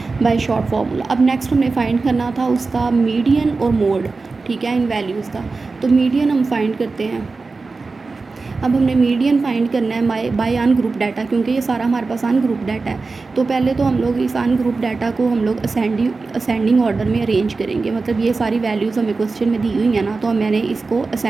बाय शॉर्ट फार्मूला। अब नेक्स्ट हमने फाइंड करना था उसका मीडियन और मोड, ठीक है, इन वैल्यूज़ का। तो मीडियन हम फाइंड करते हैं। अब हमने मीडियन फाइंड करना है बाय अनग्रुप डाटा, क्योंकि ये सारा हमारे पास अनग्रुप डाटा है। तो पहले तो हम लोग इस अनग्रुप डाटा को हम लोग असेंडिंग ऑर्डर में अरेंज करेंगे, मतलब ये सारी वैल्यूज़ हमें क्वेश्चन में दी हुई हैं ना, तो मैंने इसको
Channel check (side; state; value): left; quieter; 4.0 dB